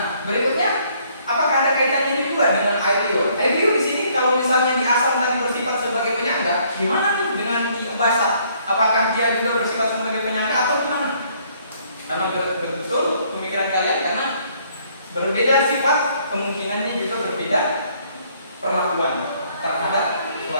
berikutnya, apakah ada kaitannya ini juga dengan air liur? Air liur di sini kalau misalnya di asam tadi bersifat sebagai penyangga, gimana nih dengan di basah? Apakah dia juga bersifat sebagai penyangga atau gimana? Karena betul pemikiran kalian, karena berbeda sifat, kemungkinannya juga berbeda perlakuan terhadap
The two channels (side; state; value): both; inverted; correlation -0.64